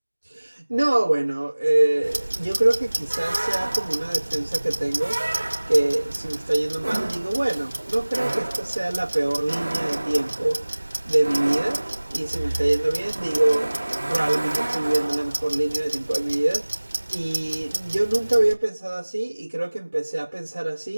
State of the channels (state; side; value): inverted; both; correlation -1.00